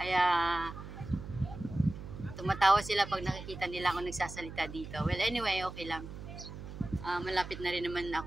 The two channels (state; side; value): noise; right; hum, 11 dB below the sound